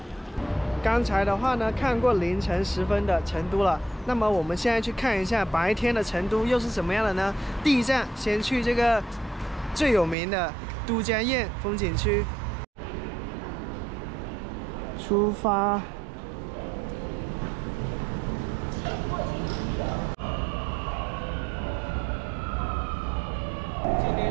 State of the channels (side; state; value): left; drops out; at 10.2 s